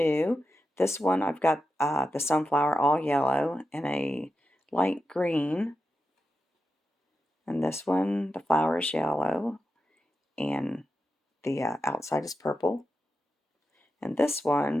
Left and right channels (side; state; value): both; normal; correlation 0.89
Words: This one I've got the sunflower all yellow and a light green, and this one the flower is yellow and the outside is purple, and this